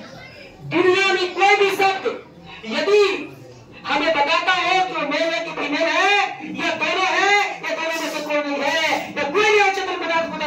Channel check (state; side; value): identical; both; correlation 1.00